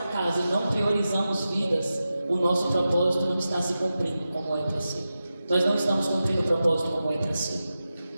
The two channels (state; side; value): inverted; both; correlation -0.92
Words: casa e não priorizamos vidas, o nosso propósito não está se cumprindo como é para ser. Nós não estamos cumprindo o propósito como é para ser.